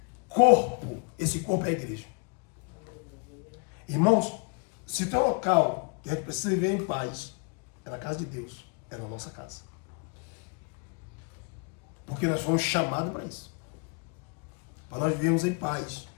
corpo. Esse corpo é a igreja. Irmãos, se tem um local que a gente precisa viver em paz, é na casa de Deus, é na nossa casa. Porque nós fomos chamados para isso. Para nós vivermos em paz,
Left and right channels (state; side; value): quieter; right; 33.3 dB